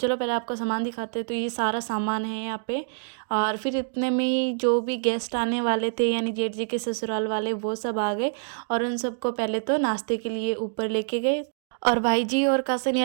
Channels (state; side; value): silent; left; digital silence